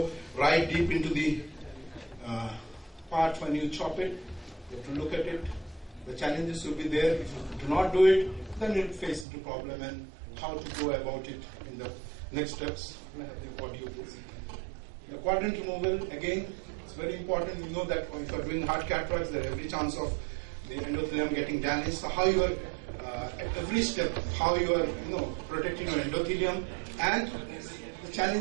right deep into the part when you chop it? You have to look at it. The challenges will be there. If you do not do it, then you'll face the problem and how to go about it in the next steps. The quadrant removal, again, it's very important. You know that if you're doing hard cataracts, there's every chance of the endothelium getting damaged. So how you are, at every step, how you are, protecting your endothelium. And the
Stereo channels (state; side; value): drops out; left; at 9.2 s